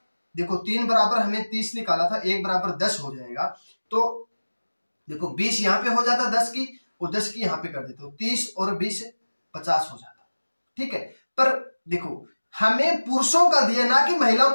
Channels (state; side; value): inverted; both; correlation -1.00